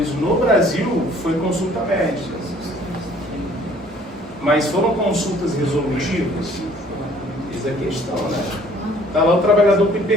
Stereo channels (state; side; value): normal; both; correlation 0.56